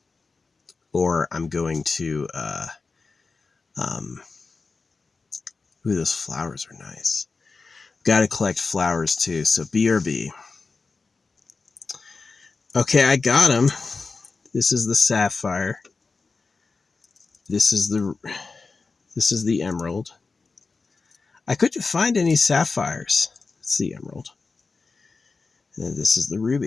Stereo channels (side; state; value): right; quieter; 4.3 dB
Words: or I'm going to, ooh, those flowers are nice. Got to collect flowers too, so BRB. Okay, I got them. This is the sapphire. This is the emerald. I couldn't find any sapphires. It's the emerald. And this is the